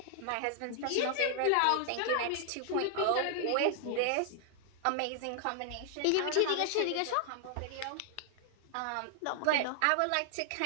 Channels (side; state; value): both; different; correlation 0.00